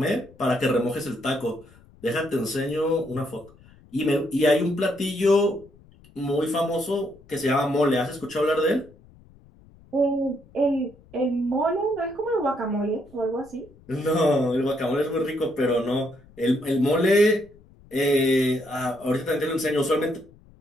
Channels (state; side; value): noise; left; rumble, 26 dB below the sound